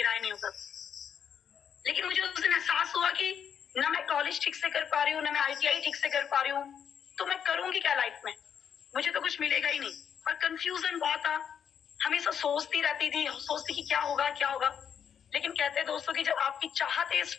नहीं होता। लेकिन मुझे उस दिन एहसास हुआ कि ना मैं कॉलेज ठीक से कर पा रही हूँ, ना मैं आईटीआई ठीक से कर पा रही हूँ, तो मैं करूंगी क्या लाइफ में, मुझे तो कुछ मिलेगा ही नहीं। और कंफ्यूजन बहुत था, हमेशा सोचती रहती थी, सोचती कि क्या होगा क्या होगा। लेकिन कहते हैं दोस्तों कि जब आपकी चाहत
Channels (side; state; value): right; quieter; 8.0 dB